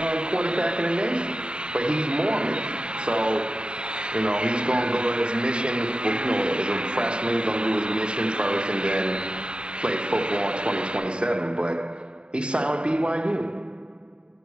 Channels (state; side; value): late; left; 0.050 ms